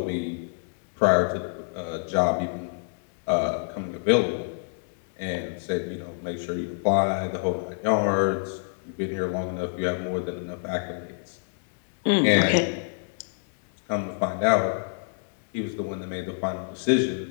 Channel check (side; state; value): right; silent; digital silence